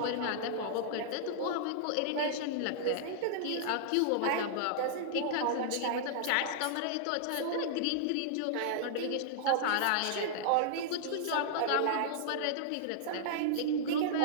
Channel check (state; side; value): different; both; correlation -0.01